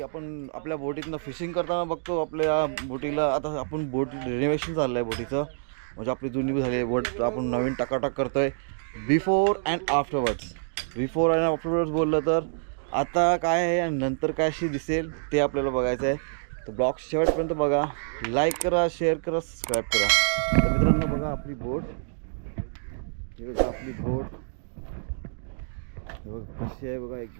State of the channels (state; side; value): silent; left; digital silence